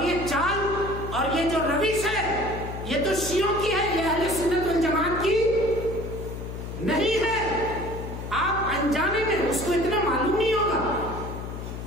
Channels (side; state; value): left; noise; hum, 8 dB below the sound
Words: یہ چال اور یہ جو روش ہے یہ تو شیعوں کی ہے، یہ اہل سنت والجماعت کی نہیں ہے. آپ انجانے میں اس کو اتنا معلوم نہیں ہوگا.